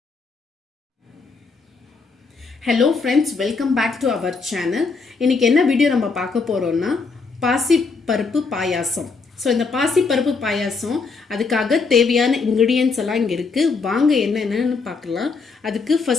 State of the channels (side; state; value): right; quieter; 4.5 dB